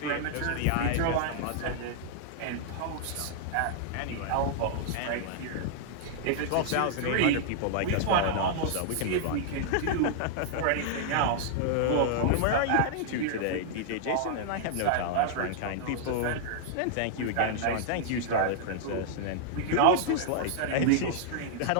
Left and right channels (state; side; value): different; both; correlation -0.01